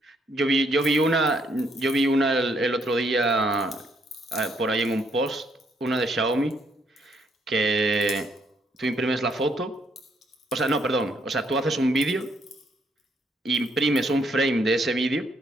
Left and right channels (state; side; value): normal; both; correlation 0.72